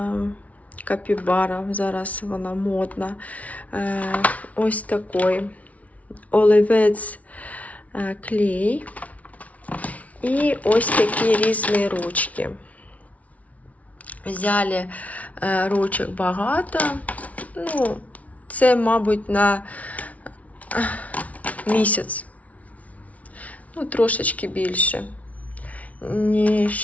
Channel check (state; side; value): late; right; 0.068 ms